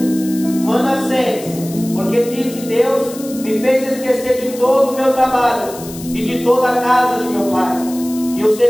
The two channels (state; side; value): noise; left; hiss, 15 dB below the sound